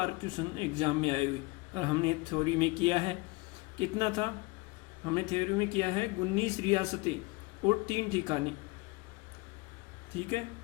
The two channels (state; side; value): quieter; right; 24.7 dB